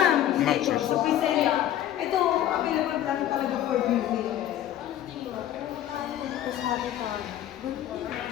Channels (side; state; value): right; quieter; 11.9 dB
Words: Maxus. Sa Priscilla. Ito, available lang talaga for viewing. Sabi ka.